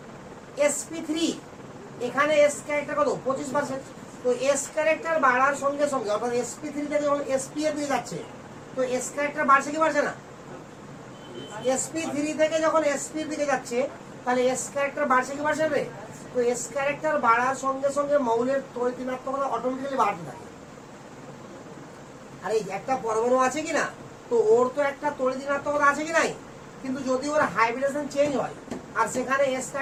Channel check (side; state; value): both; identical; correlation 1.00